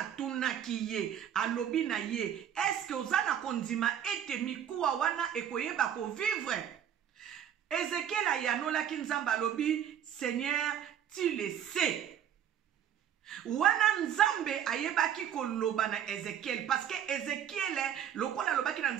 ye alobi na ye est-ce que ozana kondima ete mikuwa wana ekoyeba ko vivre? Ezekiel ayanola kinzamba lobi, Seigneur, tu le sais. Wana nzambe ayebaki koloba na Ezekiel parce que Ezekiel lokola lobaki na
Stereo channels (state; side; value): quieter; left; 9.7 dB